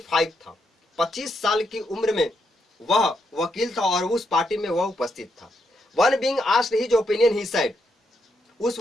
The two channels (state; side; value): normal; both; correlation 0.80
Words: था। 25 साल की उम्र में वह वकील था और उस पार्टी में वह उपस्थित था। One being asked his opinion, he said, उस